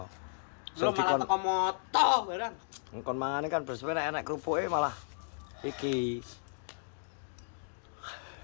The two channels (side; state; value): right; silent; digital silence